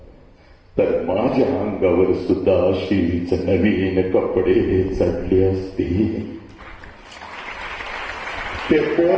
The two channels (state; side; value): identical; both; correlation 1.00